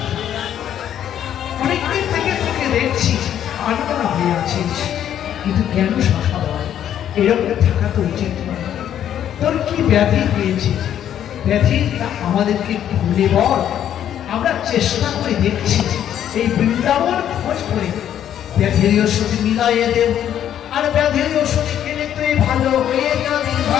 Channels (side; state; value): right; quieter; 10.3 dB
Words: অনেকদিন থেকে তোকে দেখছি আলোচনা হয়ে আছিস, কিন্তু কেন সখা বল? এরকম থাকা তো উচিত নয়। তোর কি ব্যাধি হয়েছে? ব্যাধিটা আমাদেরকে খুলে বল, আমরা চেষ্টা করে দেখছি এই বৃন্দাবন খোঁজ করে ব্যাধির ওষুধ মিলাইয়ে দেব, আর ব্যাধির ওষুধ খেলে তুই ভালো হয়ে যাবি,